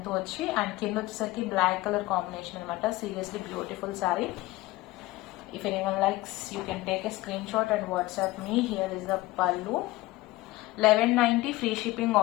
తో వచ్చి, అండ్ కింద వచ్చేసరికి బ్లాక్ కలర్ కాంబినేషన్ అనమాట. Seriously beautiful sari. If anyone likes, you can take a screenshot and WhatsApp me. Here is the pallu. 1190 free shipping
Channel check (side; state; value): right; quieter; 18.9 dB